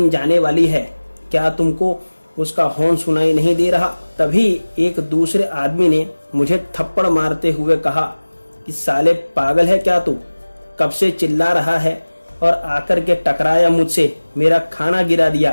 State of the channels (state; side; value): inverted; both; correlation -1.00